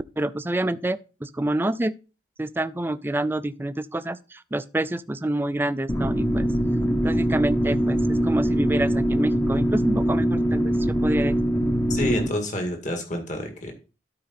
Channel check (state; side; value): normal; both; correlation 0.90